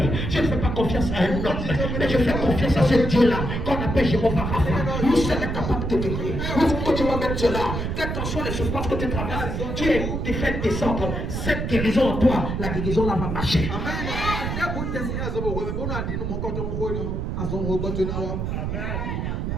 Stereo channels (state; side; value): noise; right; rumble, 2 dB below the sound